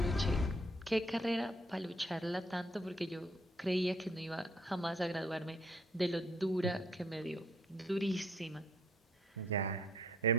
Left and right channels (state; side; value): normal; both; correlation 0.66